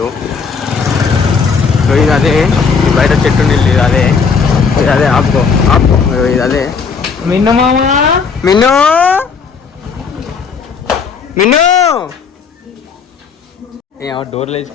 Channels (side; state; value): right; quieter; 5.6 dB